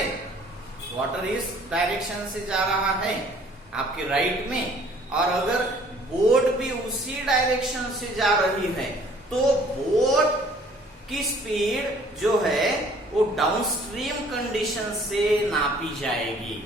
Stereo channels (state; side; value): normal; both; correlation 0.56